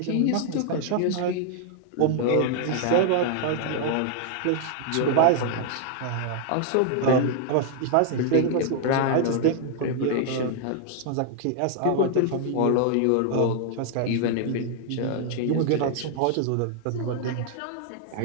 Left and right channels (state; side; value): different; both; correlation 0.00